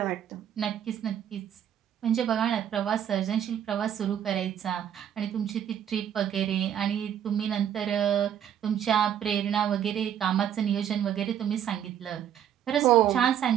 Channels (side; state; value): left; quieter; 9.8 dB